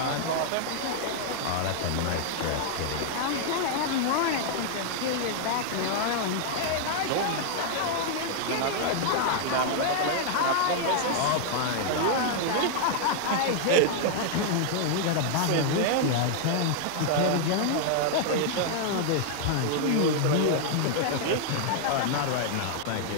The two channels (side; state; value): both; different; correlation 0.00